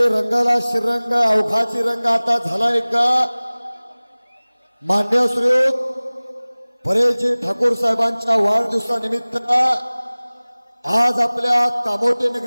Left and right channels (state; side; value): inverted; both; correlation -1.00